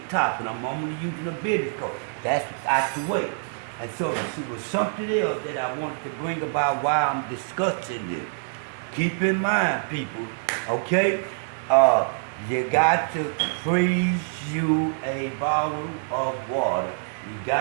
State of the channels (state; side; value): silent; left; digital silence